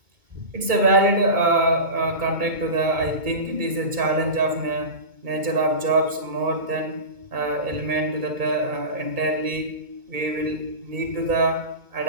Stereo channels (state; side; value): late; left; 2.2 ms